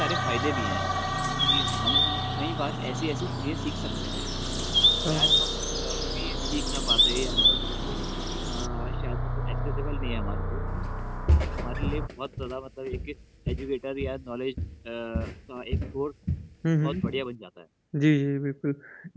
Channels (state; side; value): identical; both; correlation 1.00